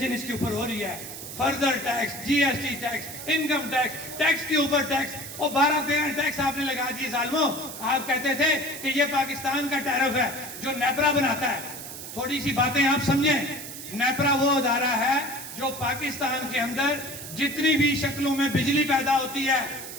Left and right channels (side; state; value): right; noise; hiss, 10 dB below the sound